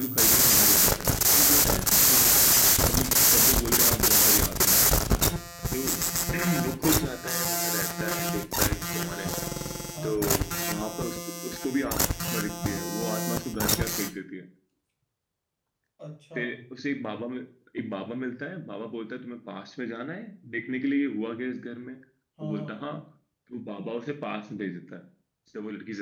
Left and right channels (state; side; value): identical; both; correlation 1.00